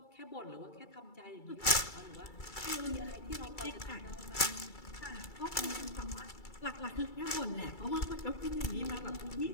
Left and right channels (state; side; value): late; right; 2.3 ms